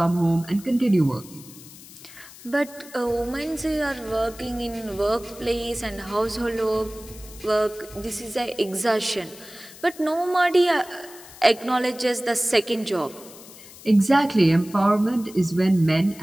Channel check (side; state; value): left; noise; hiss, 19 dB below the sound